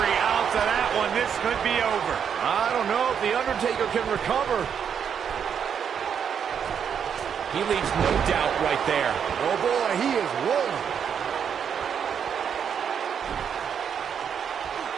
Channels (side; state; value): left; quieter; 7.7 dB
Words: ounce of that one. This could be over. I don't know if The Undertaker can recover. He leaves no doubt right there. Oh boy, he is rolling.